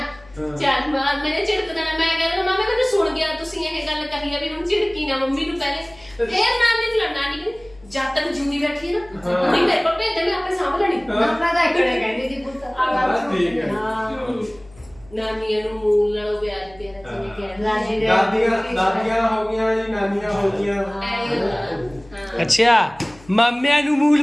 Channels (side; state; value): left; noise; hum, 25 dB below the sound